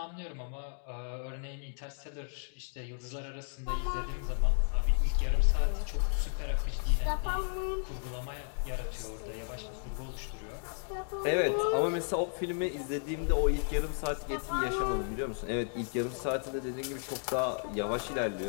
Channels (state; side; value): silent; right; 55 dB below the other